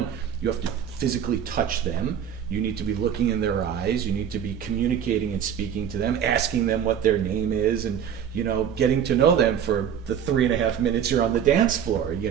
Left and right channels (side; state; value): left; quieter; 8.6 dB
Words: you have to physically touch them, you need to be looking in their eyes, you need to be communicating and speaking to them, asking them what their name is, and you know, getting to know them for the 3.5 minutes you're on the dance floor, you